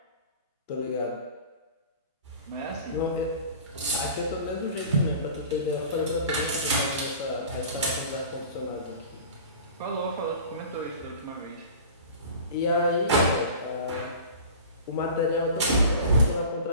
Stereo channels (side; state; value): both; inverted; correlation -0.39